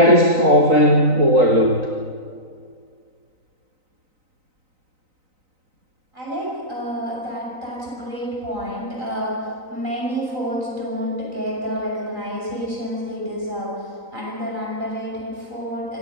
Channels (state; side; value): late; left; 3.9 ms